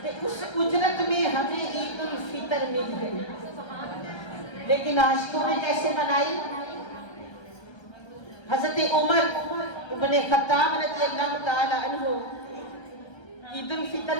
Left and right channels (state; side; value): late; right; 1.3 ms